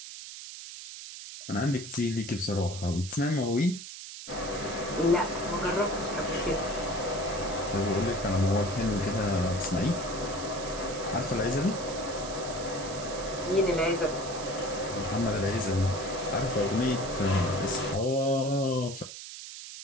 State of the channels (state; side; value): noise; right; hiss, 11 dB below the sound